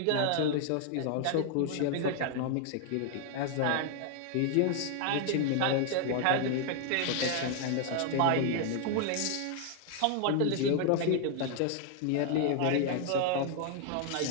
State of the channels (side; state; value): both; different; correlation 0.00